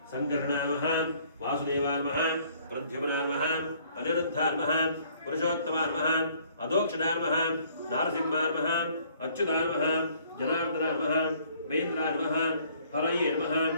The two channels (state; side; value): inverted; both; correlation -0.61